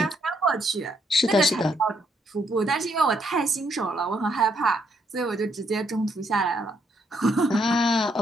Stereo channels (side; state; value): both; normal; correlation 0.73